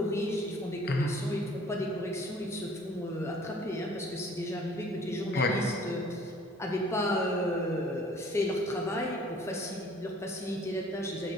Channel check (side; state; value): both; normal; correlation 0.54